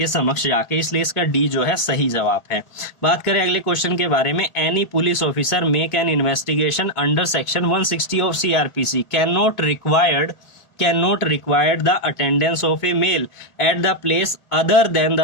समक्ष जाके, इसलिए इसका डी जो है सही जवाब है। बात करें अगले क्वेश्चन के बारे में, any police officer make an investigation under section 160 of CrPC can not require the attendance of a male at the place other than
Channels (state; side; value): late; right; 2.2 ms